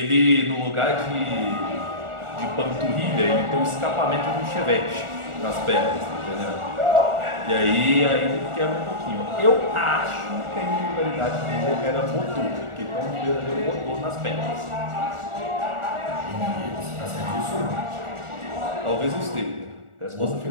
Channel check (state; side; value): late; left; 1.4 ms